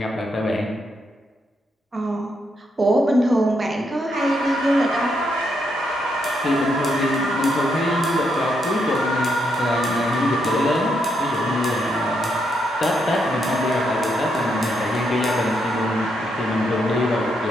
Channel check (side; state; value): both; normal; correlation 0.78